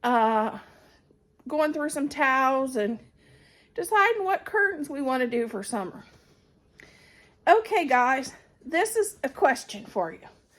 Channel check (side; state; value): both; identical; correlation 1.00